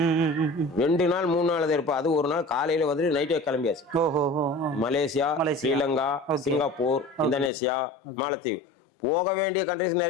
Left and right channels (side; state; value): right; drops out; at 7.5 s